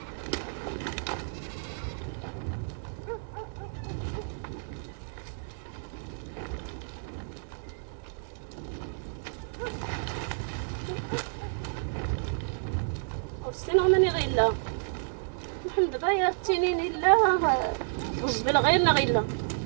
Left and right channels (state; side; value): silent; left; 58 dB below the other